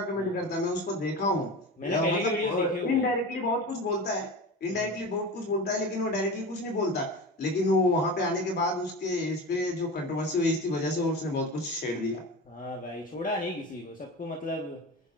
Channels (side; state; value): both; normal; correlation 0.29